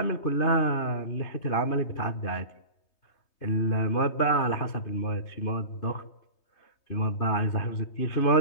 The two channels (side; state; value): right; late; 3.2 ms